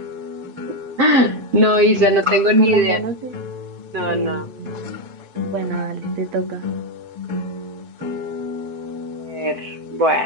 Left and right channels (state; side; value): late; left; 7.7 ms